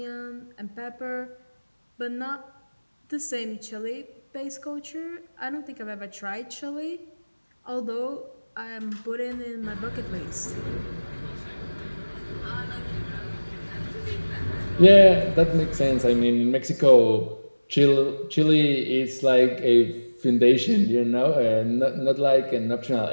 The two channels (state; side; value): inverted; both; correlation -1.00